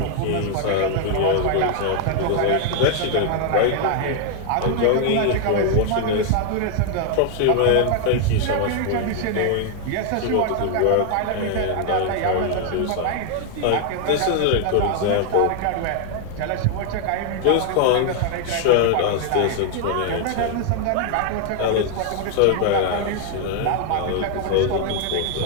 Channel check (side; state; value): both; different; correlation 0.00